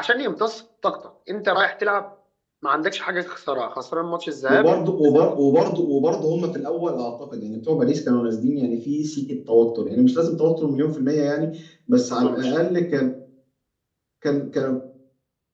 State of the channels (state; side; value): identical; both; correlation 1.00